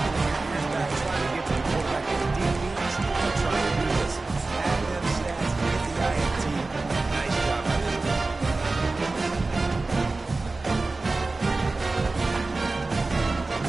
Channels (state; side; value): quieter; left; 3.4 dB